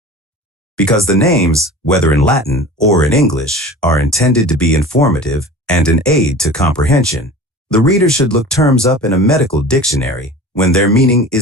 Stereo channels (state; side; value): normal; both; correlation 0.38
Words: Because the names, whether in Latin or in English, are intended to be informative and an aid to comprehension, the reader should look terms up in a medical dictionary when their meaning